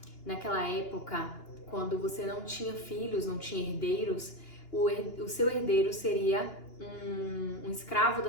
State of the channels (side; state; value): right; late; 2.9 ms